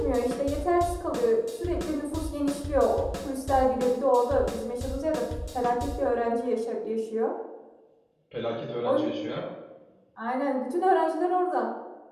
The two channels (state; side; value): identical; both; correlation 1.00